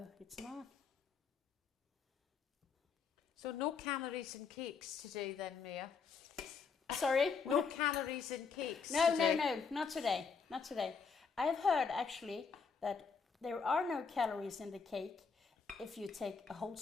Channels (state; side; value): quieter; right; 5.5 dB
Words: it's not. So no calories in cakes today then, Mia? Sorry? No calories in cakes No, today? no, not today. Not today. I've heard actually that there are no calories in the cake if you take a whole